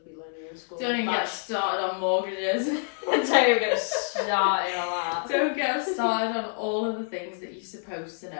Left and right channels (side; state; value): right; silent; 60 dB below the other